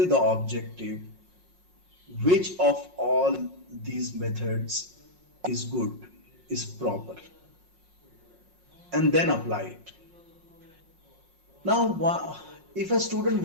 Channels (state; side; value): late; left; 5.5 ms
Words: the objective, which of all these methods is good, is proper, and then apply it. Now, if a student